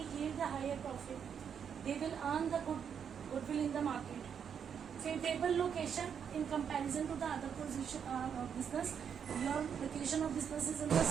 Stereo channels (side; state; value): left; quieter; 7.6 dB